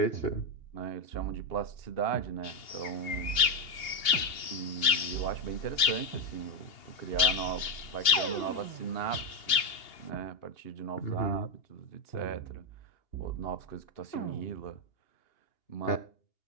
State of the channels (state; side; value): late; right; 2.8 ms